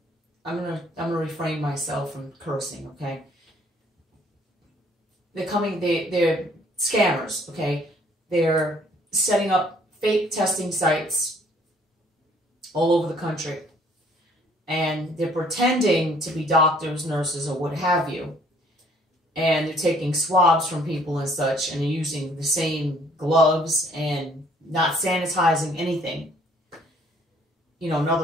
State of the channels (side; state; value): both; normal; correlation 0.60